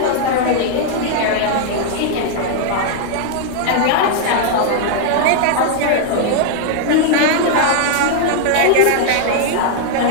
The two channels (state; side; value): different; both; correlation -0.01